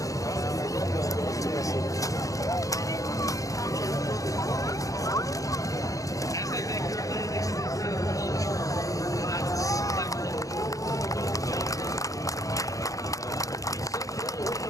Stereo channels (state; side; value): late; right; 0.16 ms